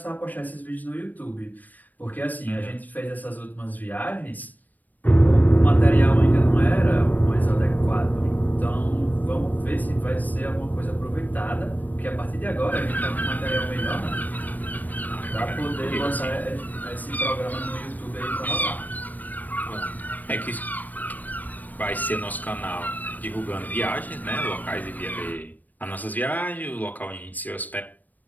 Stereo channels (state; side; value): late; right; 0.084 ms